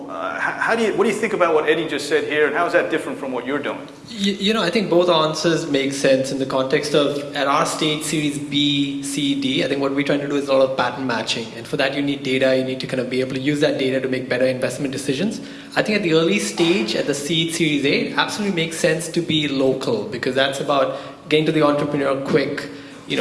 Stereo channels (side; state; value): both; identical; correlation 1.00